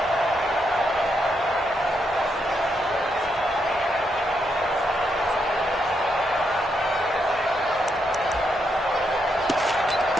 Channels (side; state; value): both; normal; correlation 0.80